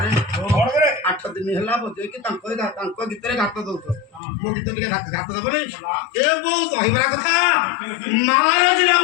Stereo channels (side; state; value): right; drops out; at 4.2 s